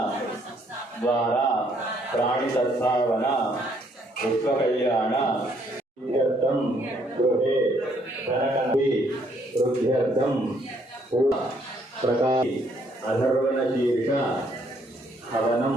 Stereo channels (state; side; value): normal; both; correlation 0.68